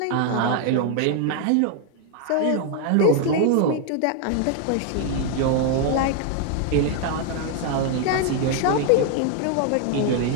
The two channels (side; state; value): both; different; correlation 0.00